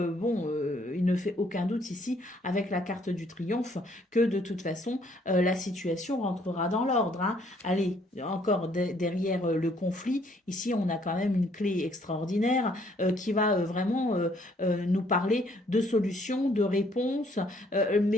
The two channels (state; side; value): normal; both; correlation 0.65